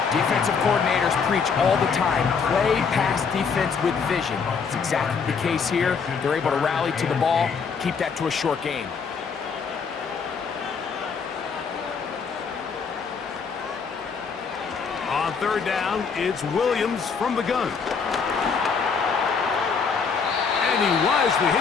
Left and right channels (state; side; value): quieter; right; 5.7 dB